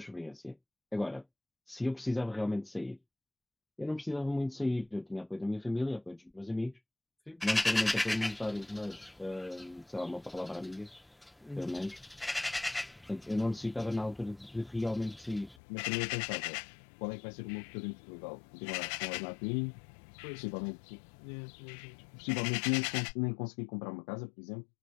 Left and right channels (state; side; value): drops out; right; at 15.6 s